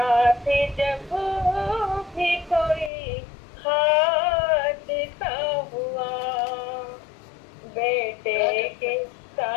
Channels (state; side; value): drops out; right; at 2.9 s